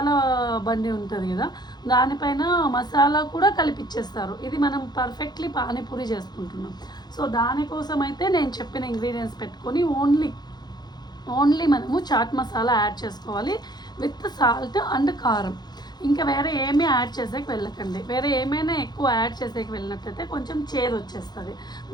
బండి ఉంటుంది కదా, దానిపైన మసాలా కూడా కలిపిచ్చేస్తారు. ఇది మనం పర్ఫెక్ట్లీ పానీపూరి చేసుకుంటున్నాం. సో దానికోసం అయితే నేను చెప్పిన ఇంగ్రీడియంట్స్ పెట్టుకొని ఓన్లీ మనము చాట్ మసాలా యాడ్ చేసుకోవాలి విత్ సాల్ట్ అండ్ కారం. ఇంకా వేరే ఏమీ యాడ్ చేసేకి వెళ్ళకండి. వేరే ఏమైనా ఎక్కువ యాడ్ చేసేకి వెళ్ళినట్టయితే కొంచెం చేదు వచ్చేస్తుంది.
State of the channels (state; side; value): late; right; 0.20 ms